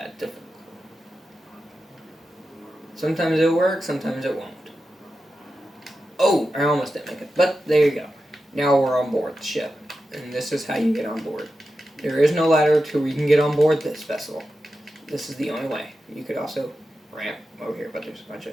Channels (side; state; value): both; normal; correlation 0.91